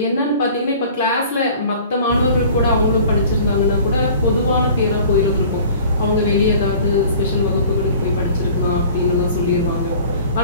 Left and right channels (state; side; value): inverted; both; correlation -0.47